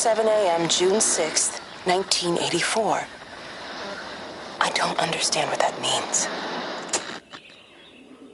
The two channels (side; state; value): both; identical; correlation 1.00